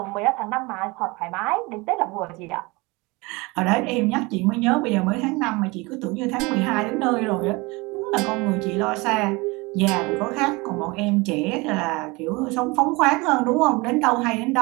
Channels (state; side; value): quieter; left; 24.9 dB